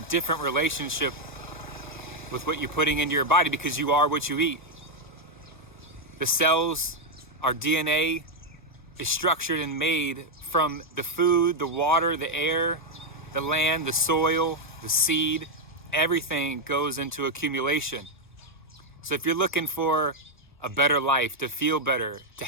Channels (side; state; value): both; normal; correlation 0.01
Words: relationship with what you're putting into your body, because you are what you eat. The cells, our DNA is structured and made from the food, the water, the air, the land, the soil, the seed. Everything goes into accumulation. So if you're looking for a better life, to feel better, to